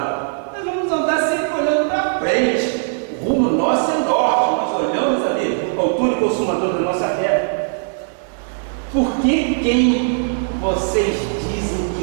Nós vamos andar sempre olhando para frente. O rumo nosso é norte. Nós olhamos ali, o autor e consumador da nossa fé. Por que quem vocês dizem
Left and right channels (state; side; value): silent; left; 66 dB below the other